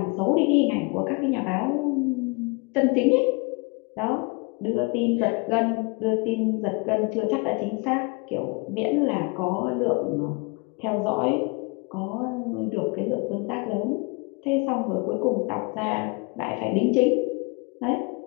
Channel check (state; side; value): quieter; right; 31.0 dB